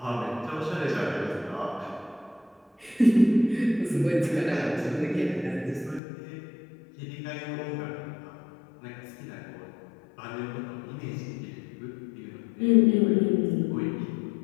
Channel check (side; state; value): right; drops out; at 6.0 s